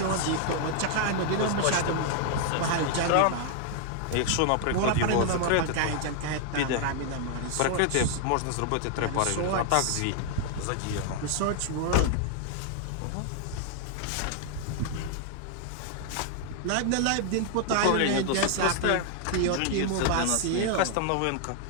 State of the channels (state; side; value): different; both; correlation 0.00